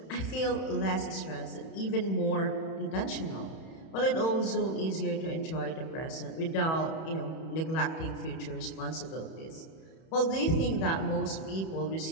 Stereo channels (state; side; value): late; right; 31 ms